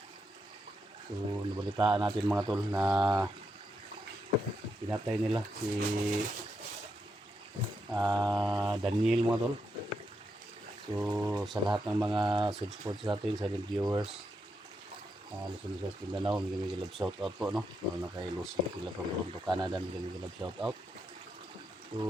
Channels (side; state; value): both; normal; correlation 0.82